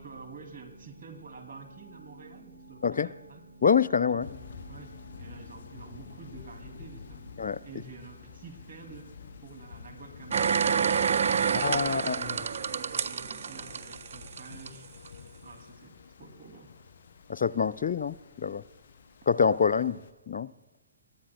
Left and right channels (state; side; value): inverted; both; correlation -0.56